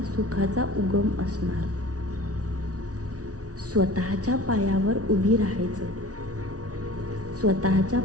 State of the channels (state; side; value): late; left; 0.68 ms